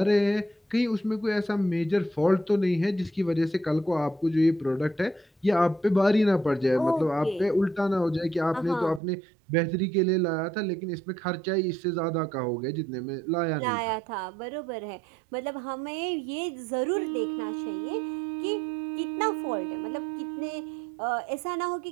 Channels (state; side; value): drops out; left; at 9.0 s